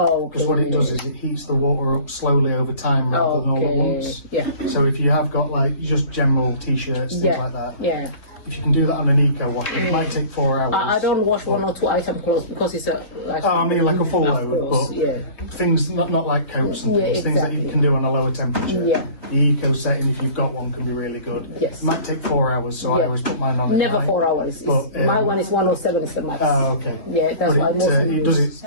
okay. Because what it does is it heats the water up slowly over time rather than all at once. Yeah. So if you have got like just general t-shirts, things like that, Yeah. if you can do that on an eco wash, it might take 4 hours. I don't wash 1 or 2 item clothes because it's a like. Oh, I mean like a full Of load, course, but yeah. things not like coats and things that you exactly. can do on a lower temperature. Yeah. The eco setting, if you've got one, can be really good. Yes. It might take 4 hours, so I Yeah. always put mine on at Never night. 4 hours. But, My one is 107 is the max. Oh, okay. Yeah, that's why But mostly it does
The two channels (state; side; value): late; right; 3.6 ms